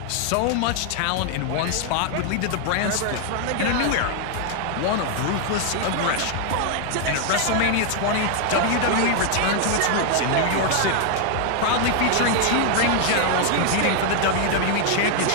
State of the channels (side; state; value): both; different; correlation 0.00